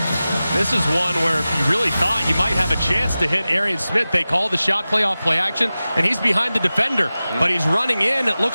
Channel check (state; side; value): inverted; both; correlation -0.96